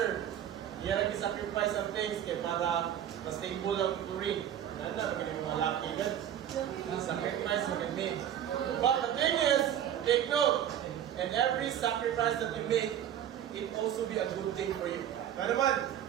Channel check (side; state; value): left; quieter; 10.3 dB